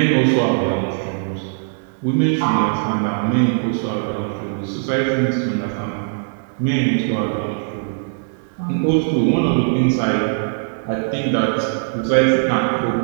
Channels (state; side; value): silent; left; 65 dB below the other